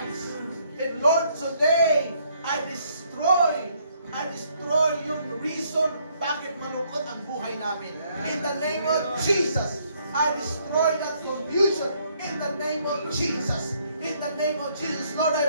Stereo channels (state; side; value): inverted; both; correlation -0.68